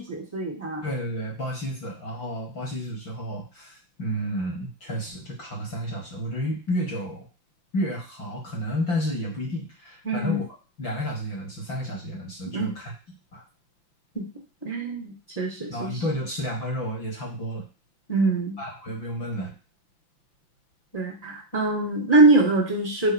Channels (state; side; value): late; right; 5.9 ms